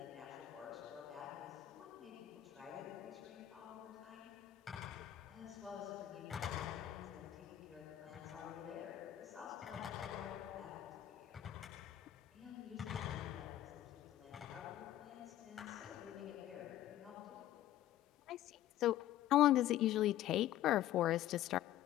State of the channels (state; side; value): quieter; right; 13.1 dB